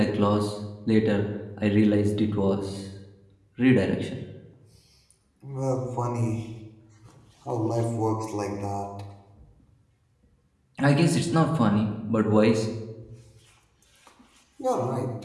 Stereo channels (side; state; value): both; identical; correlation 1.00